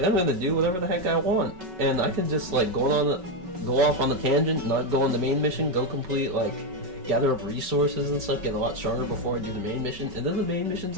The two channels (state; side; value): late; left; 5.3 ms